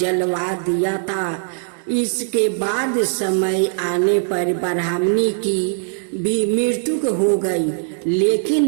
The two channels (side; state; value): left; silent; digital silence